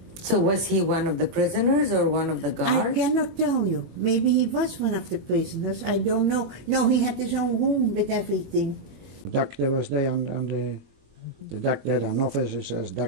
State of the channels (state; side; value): late; left; 21 ms